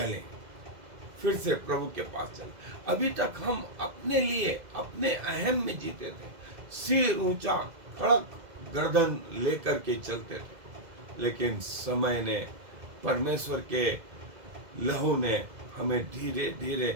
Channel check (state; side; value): late; left; 2.0 ms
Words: फिर से प्रभु के पास चलें। अभी तक हम अपने लिए, अपने अहम में जीते थे, सिर ऊंचा, कड़क गर्दन लेकर के चलते थे, लेकिन समय ने, परमेश्वर के लहू ने हमें धीरे